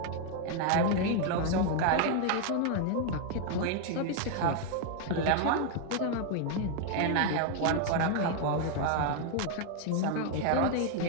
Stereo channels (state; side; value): different; both; correlation 0.00